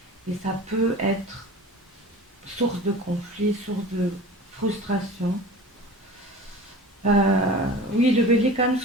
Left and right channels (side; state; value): both; normal; correlation 0.37